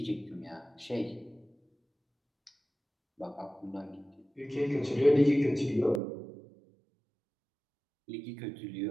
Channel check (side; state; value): left; drops out; at 6.0 s